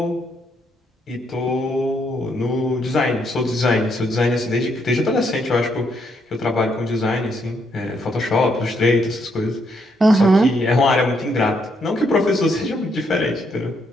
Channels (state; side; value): normal; both; correlation 0.75